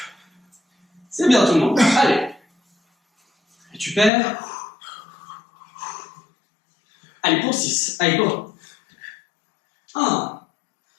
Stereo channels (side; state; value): right; drops out; at 4.1 s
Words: C'est bien tout le monde. Allez. Récupère. Allez, pour 6. Allez, go. 1,